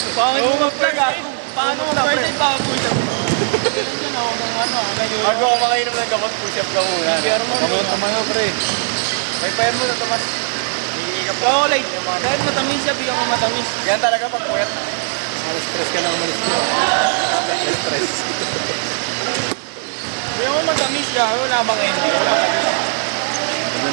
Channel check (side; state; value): left; silent; digital silence